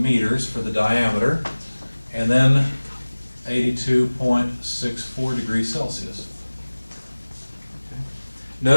for the diameter, and then 82.64 degrees Celsius. Okay.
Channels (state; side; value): inverted; both; correlation -1.00